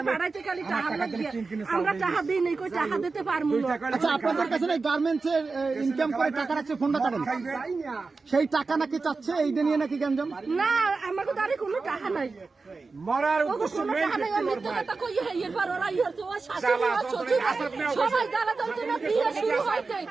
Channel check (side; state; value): left; quieter; 4.1 dB